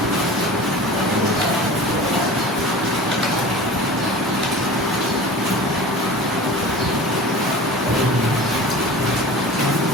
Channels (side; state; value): both; normal; correlation 0.37